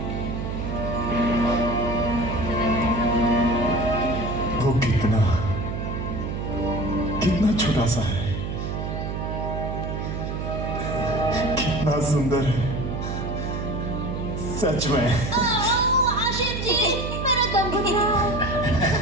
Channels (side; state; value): right; noise; hum, 4 dB below the sound